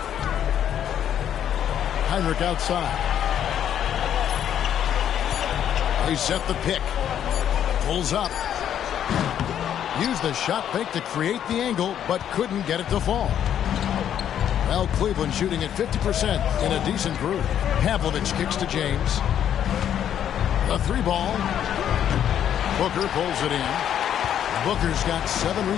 Heinrich outside. They set the pick. Pulls up. Used the shot fake to create the angle, but couldn't get it to fall. Well, Cleveland shooting at 50% in a decent group. Pavlovic kicks to James. The 3 ball. Booker pulls it in. Booker's got 7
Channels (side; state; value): right; quieter; 9.8 dB